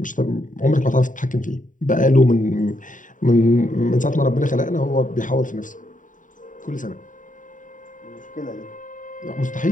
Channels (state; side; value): late; right; 0.38 ms